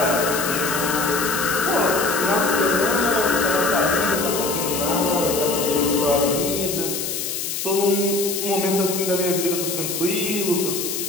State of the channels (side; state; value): left; noise; hiss, 4 dB below the sound